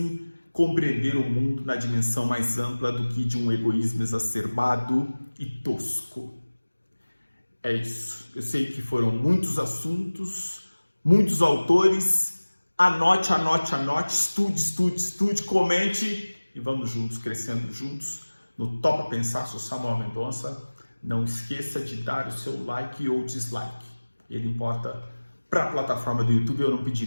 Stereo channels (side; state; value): both; inverted; correlation -1.00